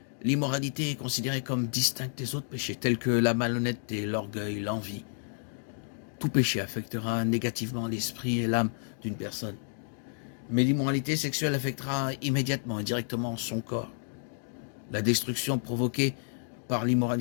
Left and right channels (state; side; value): silent; right; 58 dB below the other